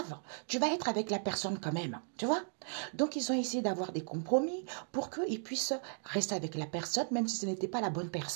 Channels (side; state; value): left; silent; 54 dB below the other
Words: Tu vas être avec la personne quand même. Tu vois? Donc, ils ont essayé d'avoir des compromis pour qu'ils puissent rester avec la personne, même si ce n'était pas la bonne